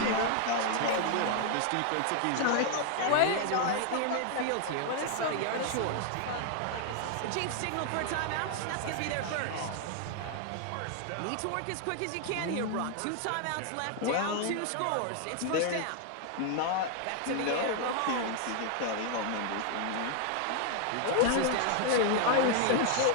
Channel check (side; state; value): both; different; correlation 0.00